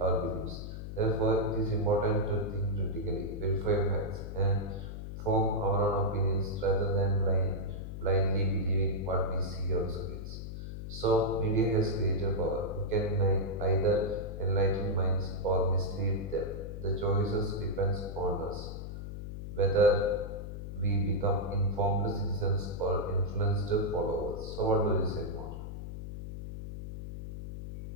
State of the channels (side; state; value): left; noise; hum, 8 dB below the sound